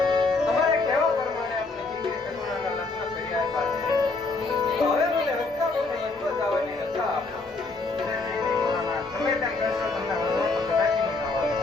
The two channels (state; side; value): quieter; right; 3.6 dB